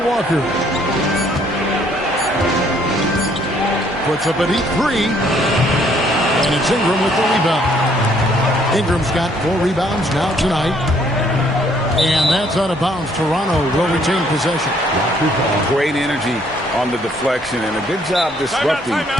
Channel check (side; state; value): both; normal; correlation 0.65